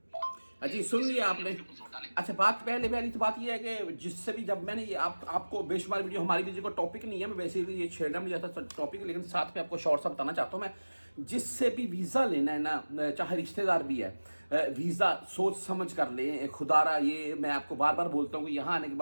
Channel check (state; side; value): inverted; both; correlation -1.00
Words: जी सुन लिया आपने। अच्छा बात पहली तो बात ये है कि जिससे भी जब मैंने ये आपको बेशुमार वीडियो, हमारी वीडियो का टॉपिक नहीं है, मैं वैसे ही ये छेड़ना नहीं चाहता टॉपिक, लेकिन साथ में आपको शॉर्ट सा बताना चाहता हूँ मैं। जिससे भी वीज़ा लेना है ना, चाहे रिश्तेदार भी है, वीज़ा सोच समझ कर लें। खुदारा ये मैं आपको बार बार बोलता हूँ कि यहाँ आने के